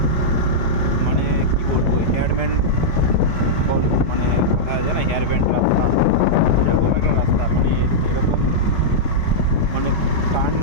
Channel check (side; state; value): right; late; 5.3 ms